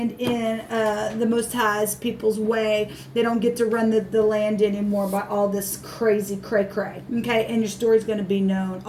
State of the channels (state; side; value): identical; both; correlation 1.00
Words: in the Most High's people's way. They don't get to run the land anymore by all this crazy cray-cray. Okay, and your story's gonna be known